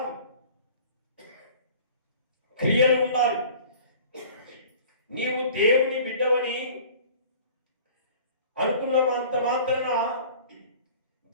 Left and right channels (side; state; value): both; inverted; correlation -0.46